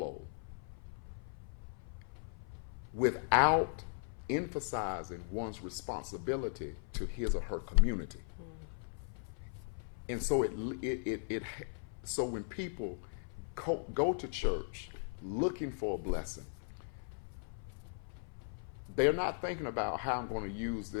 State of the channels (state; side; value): silent; right; 52 dB below the other